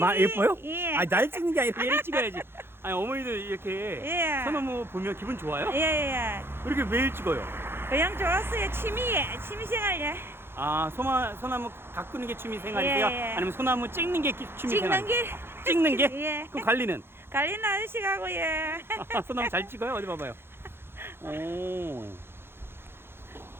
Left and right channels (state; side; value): late; left; 0.11 ms